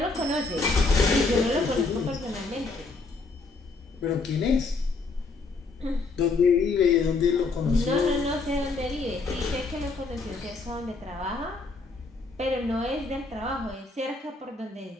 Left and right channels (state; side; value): quieter; right; 3.9 dB